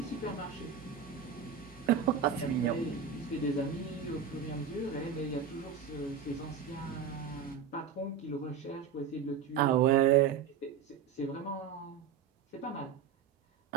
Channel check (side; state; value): left; quieter; 7.3 dB